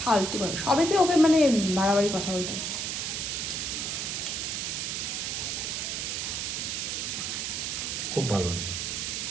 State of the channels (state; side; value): noise; right; hiss, 2 dB below the sound